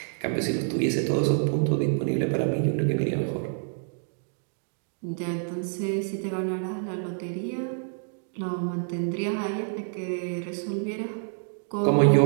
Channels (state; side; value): silent; left; digital silence